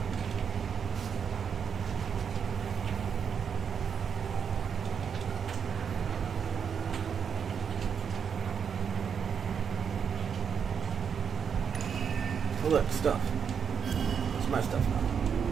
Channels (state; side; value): quieter; left; 7.0 dB